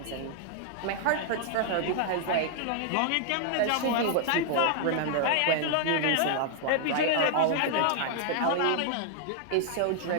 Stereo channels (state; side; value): different; both; correlation -0.01